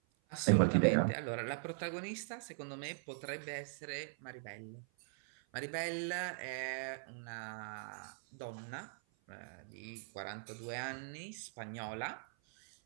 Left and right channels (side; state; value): left; silent; 51 dB below the other